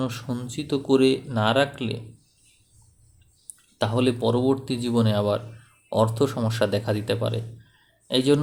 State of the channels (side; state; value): both; identical; correlation 1.00